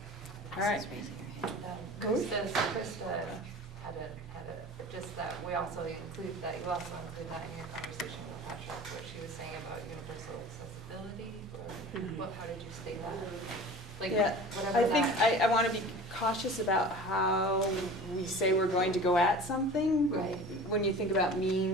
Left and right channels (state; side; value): normal; both; correlation 0.39